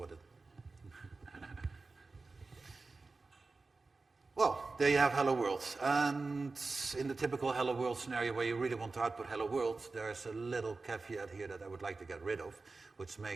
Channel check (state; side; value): quieter; left; 3.8 dB